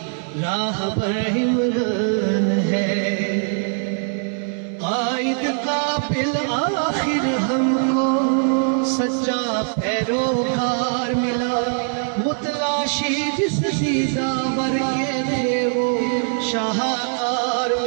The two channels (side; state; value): left; silent; 58 dB below the other